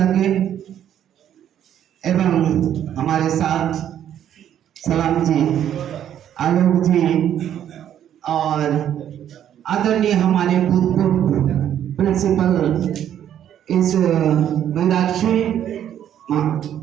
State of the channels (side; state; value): left; quieter; 10.3 dB